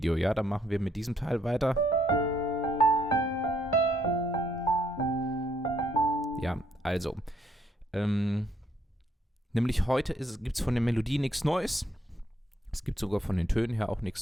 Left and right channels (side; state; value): both; normal; correlation 0.71